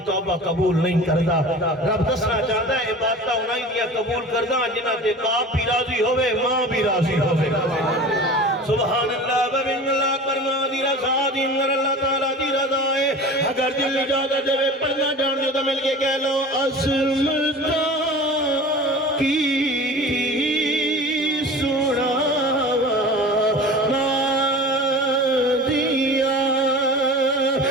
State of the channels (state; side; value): normal; both; correlation 0.38